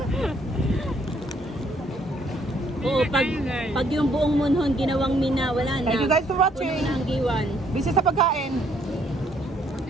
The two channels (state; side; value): normal; both; correlation 0.68